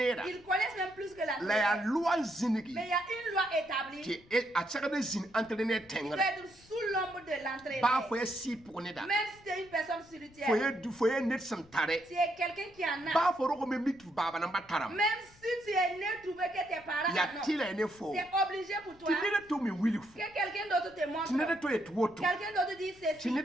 Ils connaissent même plus que l'athlète. Mais il y a une loi établie qui doit être sous l'ombre de l'entraîneur. Même si tu es une personne spirituelle, tu es quelqu'un qui en a. Même si tu es né trouvé que tes parents non, c'est obligé pour toi que quelqu'un d'autre te montre. Quelqu'un d'autre dit ceci.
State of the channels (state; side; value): noise; left; rumble, 26 dB below the sound